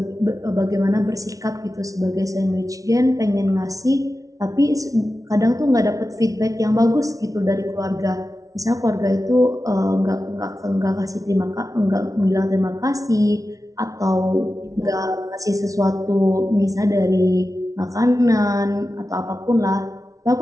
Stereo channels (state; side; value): late; left; 0.17 ms